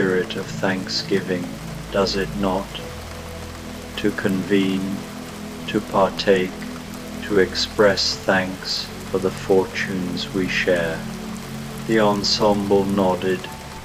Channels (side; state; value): both; identical; correlation 1.00